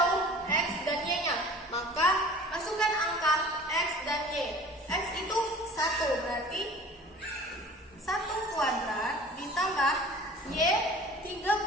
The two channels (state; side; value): normal; both; correlation 0.44